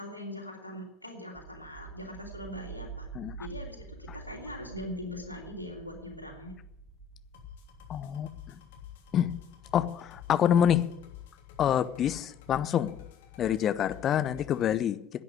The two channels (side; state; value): right; quieter; 8.5 dB